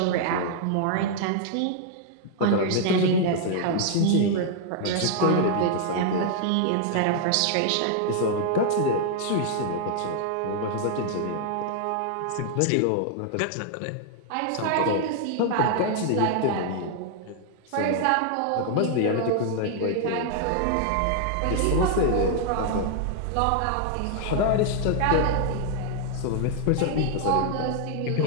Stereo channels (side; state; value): both; different; correlation 0.00